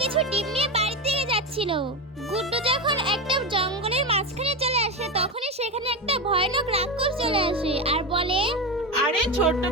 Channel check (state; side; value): normal; both; correlation 0.17